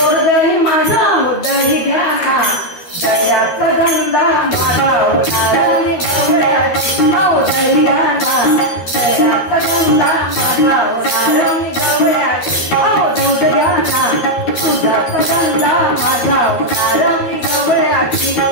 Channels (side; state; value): right; late; 13 ms